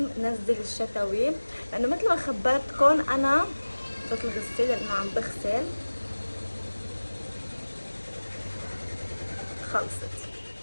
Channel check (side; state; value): both; inverted; correlation -1.00